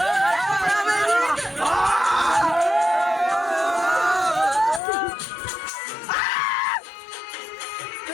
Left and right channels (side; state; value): right; drops out; at 4.8 s